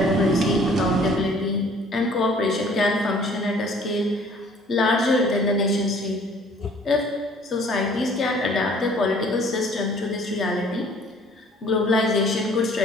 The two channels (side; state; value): both; normal; correlation 0.55